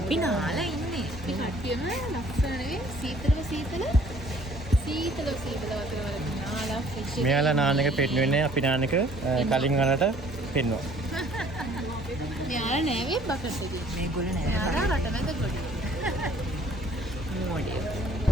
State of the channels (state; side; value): normal; both; correlation 0.57